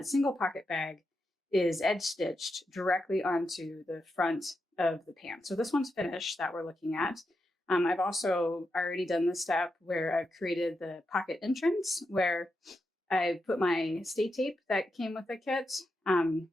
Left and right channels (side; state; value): both; normal; correlation 0.86